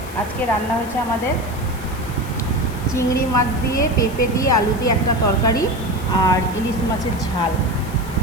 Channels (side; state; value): left; noise; hiss, 18 dB below the sound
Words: আজকে রান্না হয়েছে আমাদের চিংড়ি মাছ দিয়ে, পেঁপে দিয়ে, আলু দিয়ে একটা তরকারি আর ইলিশ মাছের ঝাল।